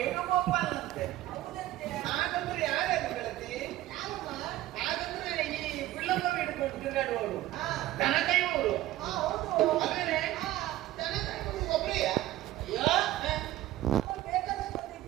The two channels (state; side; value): quieter; left; 15.2 dB